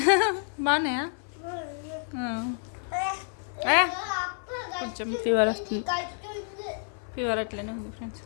బాగున్నాయా? కొంచెం ఫీవర్ వస్తుంది. ఫీవర్ అట్లనే ఉంది ఫ్రెండ్స్.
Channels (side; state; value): right; silent; 56 dB below the other